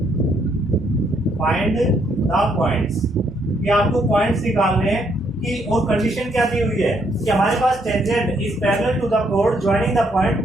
find the points, ये आपको पॉइंट्स निकालने हैं कि, और कंडीशन क्या दी हुई है कि हमारे पास tangent is parallel to the कोड ज्वाइनिंग द पॉइंट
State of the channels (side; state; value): both; normal; correlation 0.72